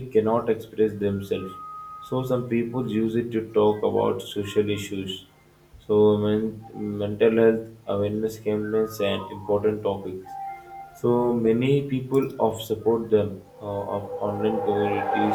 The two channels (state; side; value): identical; both; correlation 1.00